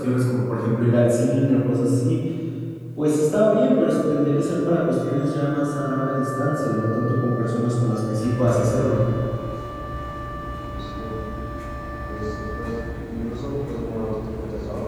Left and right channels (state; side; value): identical; both; correlation 1.00